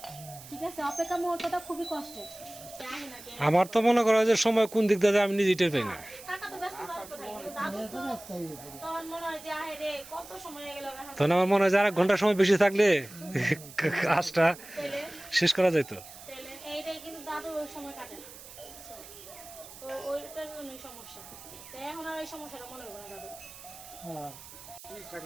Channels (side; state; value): right; noise; hiss, 17 dB below the sound